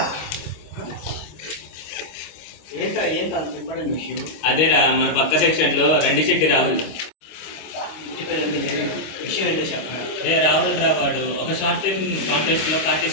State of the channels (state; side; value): late; right; 26 ms